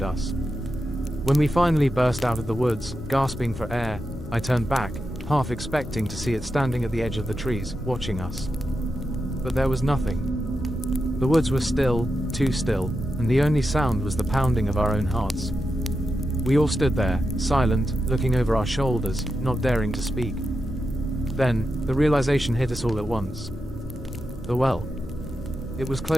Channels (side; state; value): both; normal; correlation 0.88